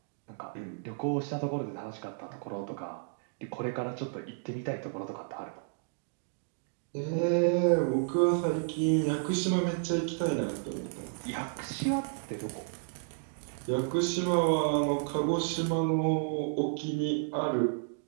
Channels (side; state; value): left; silent; digital silence